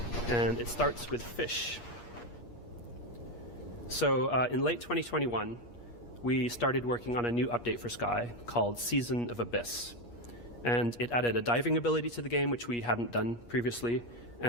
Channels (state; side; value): late; right; 8.4 ms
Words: And it starts with fish. So in late 2021, we started working on a new update for Sky called Season of Abyss. And it added a diving ability to the game, which we hadn't done previously,